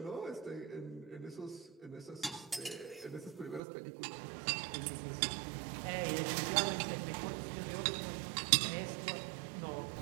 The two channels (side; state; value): left; drops out; at 3.6 s